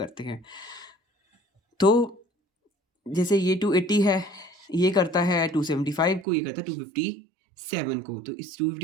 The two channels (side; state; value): left; drops out; at 6.2 s